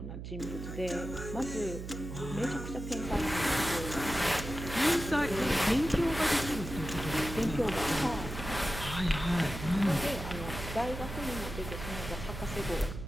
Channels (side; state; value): right; noise; hum, 8 dB below the sound